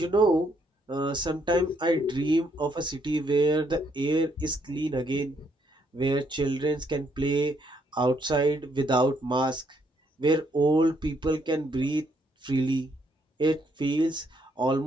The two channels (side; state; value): both; normal; correlation 0.72